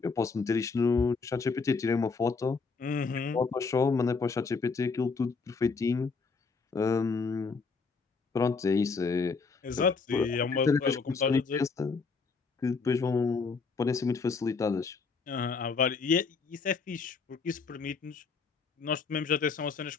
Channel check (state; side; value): quieter; right; 4.7 dB